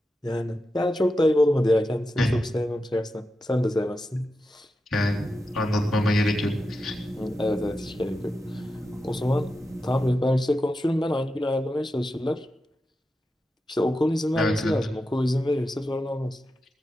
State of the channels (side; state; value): both; normal; correlation 0.90